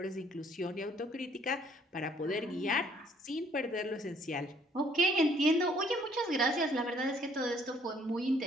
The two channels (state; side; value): normal; both; correlation 0.62